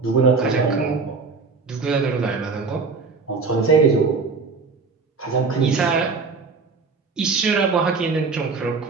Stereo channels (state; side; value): quieter; left; 4.6 dB